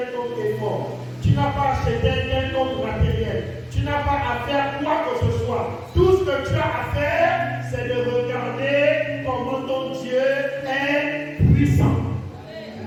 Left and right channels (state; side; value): identical; both; correlation 1.00